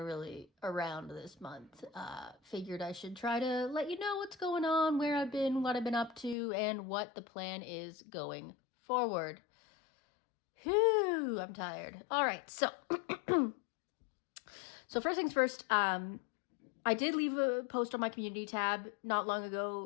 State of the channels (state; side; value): drops out; right; at 6.4 s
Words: around this month. Figured I should try to let you know what's going on, where I've been, what I've been up to, and what the plan is going forward. Whew, I'm tired. All right, so so first things first, I did leave a post on my community tab not long